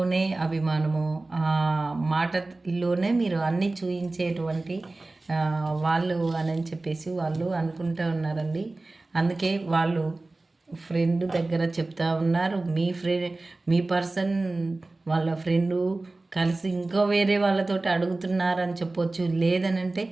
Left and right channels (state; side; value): quieter; left; 3.1 dB